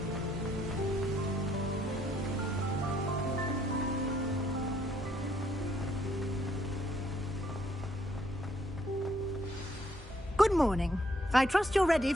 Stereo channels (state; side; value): normal; both; correlation 0.69